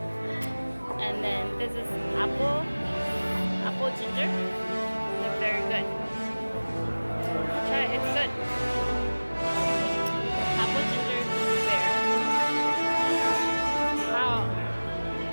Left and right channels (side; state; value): both; inverted; correlation -1.00